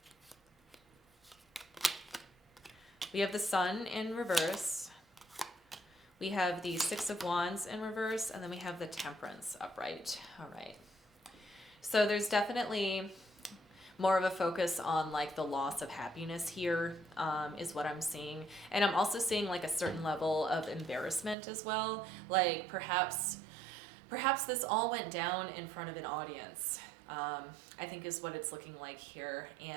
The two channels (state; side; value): drops out; left; at 21.4 s